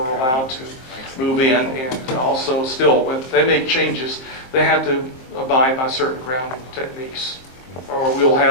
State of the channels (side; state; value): right; late; 23 ms